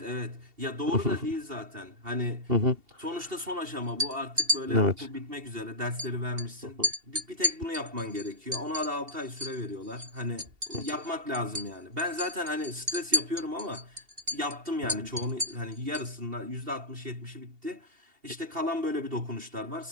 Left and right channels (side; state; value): left; late; 2.7 ms